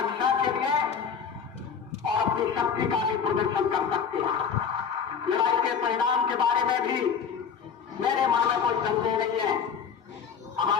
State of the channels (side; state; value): right; quieter; 6.8 dB